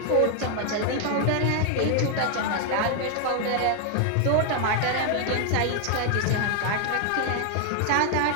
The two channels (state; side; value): different; both; correlation 0.00